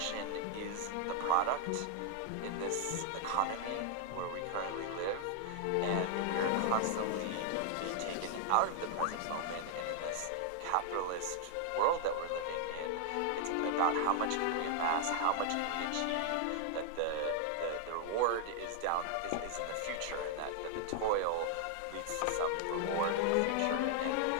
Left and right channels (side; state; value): both; different; correlation 0.00